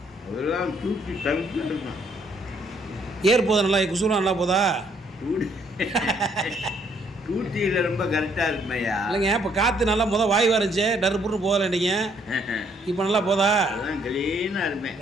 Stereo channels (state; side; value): normal; both; correlation 0.67